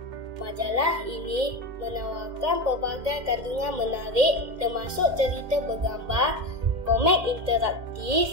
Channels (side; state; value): left; late; 2.3 ms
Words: Majalah ini menawarkan pelbagai kandungan menarik termasuk cerita bergambar, komik